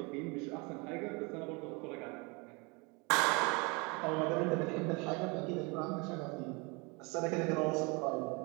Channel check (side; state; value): left; quieter; 29.0 dB